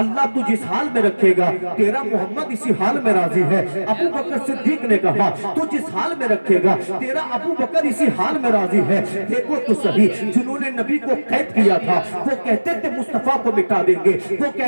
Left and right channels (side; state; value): both; inverted; correlation -1.00